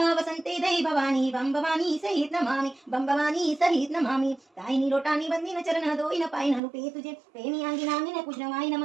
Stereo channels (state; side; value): drops out; left; at 6.6 s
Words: वसन्ते दई भवानी, बम भवानी सहित नमामि, बम भवानी सहित नमामि। ताईनी लोटानी बंदीन चरण, दोई न पाई न रूपे तुझे, प्रेमी आंगी नांगी न पूजनवाय